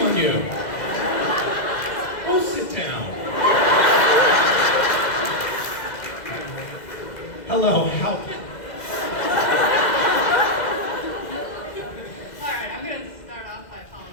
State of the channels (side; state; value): right; late; 2.0 ms